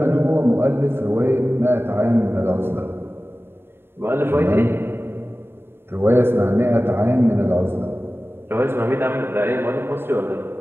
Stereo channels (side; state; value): left; late; 0.11 ms